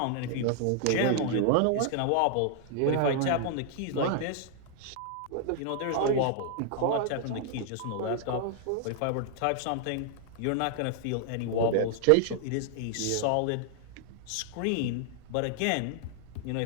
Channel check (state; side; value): different; both; correlation 0.00